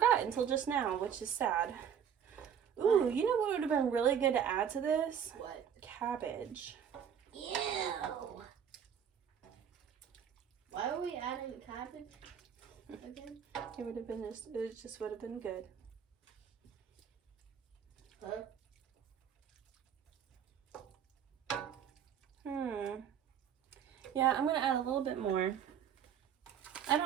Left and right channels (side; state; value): left; quieter; 8.4 dB